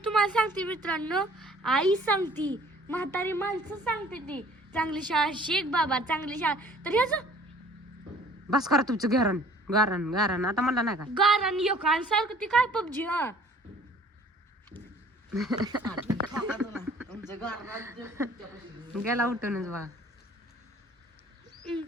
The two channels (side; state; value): both; normal; correlation 0.53